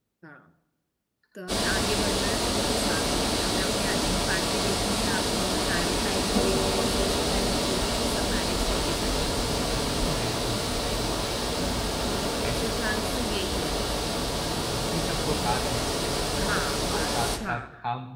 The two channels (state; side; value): identical; both; correlation 1.00